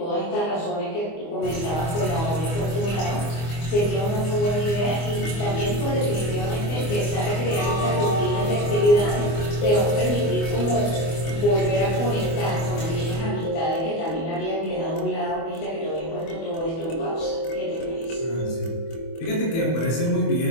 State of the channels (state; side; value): late; right; 24 ms